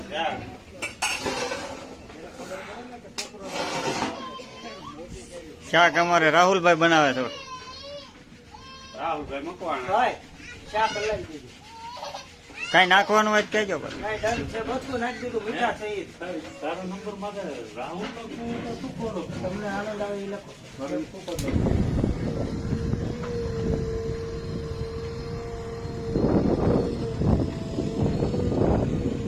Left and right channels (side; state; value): both; identical; correlation 1.00